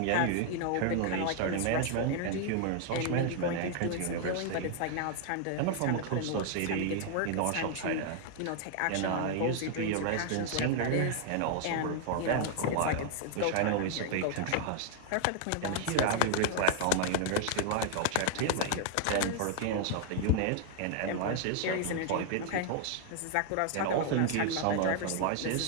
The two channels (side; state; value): both; different; correlation 0.00